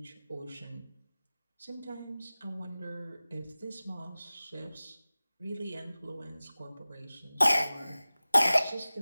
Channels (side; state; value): both; inverted; correlation -0.97